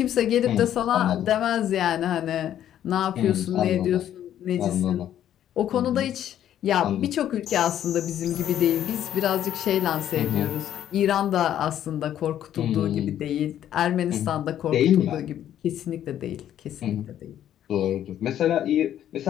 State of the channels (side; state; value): right; quieter; 11.0 dB